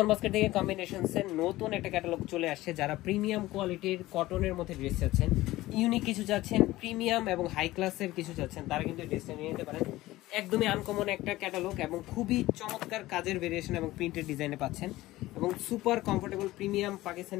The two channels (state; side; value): quieter; right; 17.4 dB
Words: basket থেকে কম্বিনেশনসের নতুন একটা ক্যাটালগ চলে আসছে। যারা প্রিমিয়াম কোয়ালিটির কটনের মধ্যে ড্রেস চাচ্ছেন, ইউনিক কিছু চাচ্ছেন, প্রিমিয়াম এবং হাই ক্লাসের কিছু চাচ্ছেন, তারা কিন্তু ড্রেসটা নিয়ে নিতে পারেন। একদমই আনকমন একটা ক্যাটালগ এবং খুবই চমৎকার কাজের ভেরিয়েশন এবং প্রিন্টেড ডিজাইনে পাচ্ছেন এবং super comfortable premium